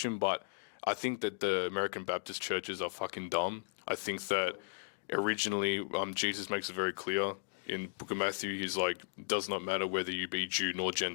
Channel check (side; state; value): right; silent; digital silence